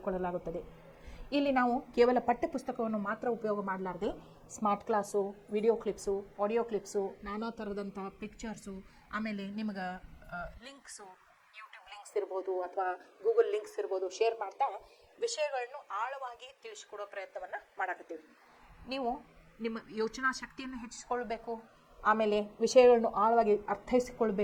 ಇಲ್ಲಿ ನಾವು ಕೇವಲ ಪಠ್ಯಪುಸ್ತಕವನ್ನು ಮಾತ್ರ ಉಪಯೋಗ ಮಾಡಲಾರದೆ smart class, video clips, audio clips, ನಾನಾ ಥರದಂಥ ಪಿಕ್ಚರ್ಸು, ಆಮೇಲೆ ನಿಮಗೆ ಲಿಂಕ್ಸು, ಯೂಟ್ಯೂಬ್ ಲಿಂಕ್ಸ್ ಇರ್ಬೋದು ಅಥವಾ ಗೂಗಲ್ ಲಿಂಕ್ಸ್ ಇರ್ಬೋದು ಶೇರ್ ಮಾಡ್ತಾ ವಿಷಯಗಳನ್ನು ಆಳವಾಗಿ ತಿಳಿಸಿಕೊಡೋ ಪ್ರಯತ್ನವನ್ನು ಮಾಡಕತ್ತೀವಿ. ನೀವು ನಿಮ್ಮ ಯೋಚನಾ ಶಕ್ತಿಯನ್ನು ಹೆಚ್ಚಿಸ್ಕೊಳ್ಬೇಕು, ಆಮೇಲೆ ವಿಷಯಗಳನ್ನು ಆಳವಾಗಿ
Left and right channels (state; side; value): identical; both; correlation 1.00